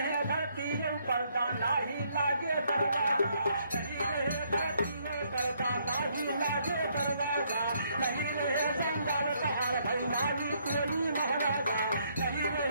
धरती पर्दा नाही लागे दरवाजा नहीं रहे धरती पर्दा नाही लागे दरवाजा नहीं रहे जंगल पहाड़ भाई नाली कोली महाराजा नहीं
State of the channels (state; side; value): inverted; both; correlation -0.70